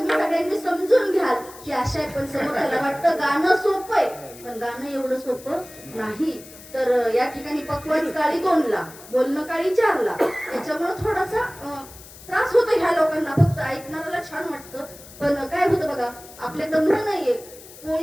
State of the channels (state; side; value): noise; left; hiss, 19 dB below the sound